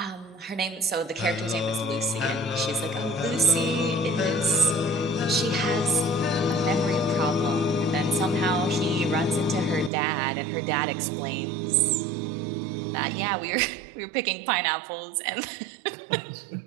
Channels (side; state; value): left; drops out; at 9.9 s